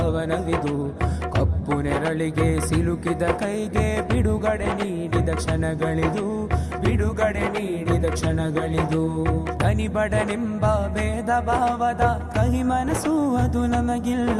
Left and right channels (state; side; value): identical; both; correlation 1.00